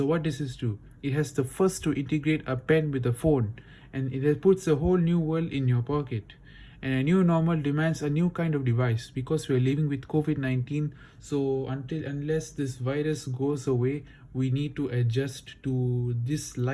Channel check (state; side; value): identical; both; correlation 1.00